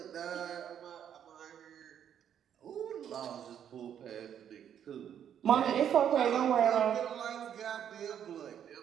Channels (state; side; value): quieter; left; 9.3 dB